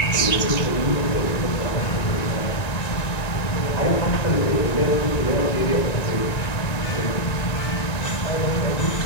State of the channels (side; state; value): right; late; 1.9 ms